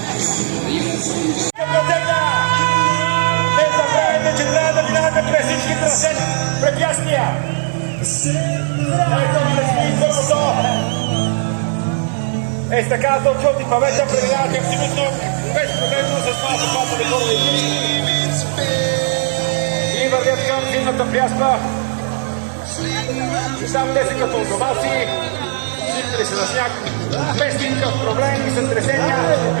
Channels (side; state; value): left; silent; 68 dB below the other